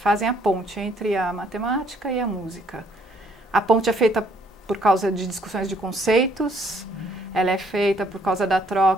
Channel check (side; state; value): both; normal; correlation 0.65